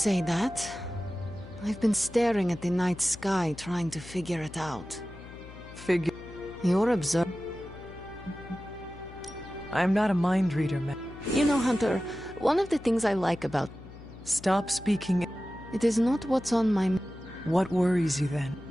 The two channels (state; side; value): noise; left; hum, 17 dB below the sound